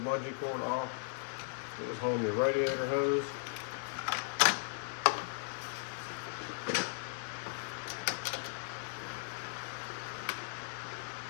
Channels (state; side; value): silent; right; 53 dB below the other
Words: bungee cord off. It was home your radiator hose.